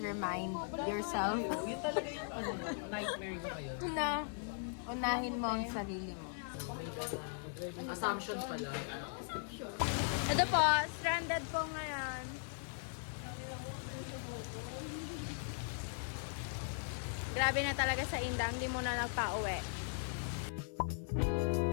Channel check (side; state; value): right; silent; 52 dB below the other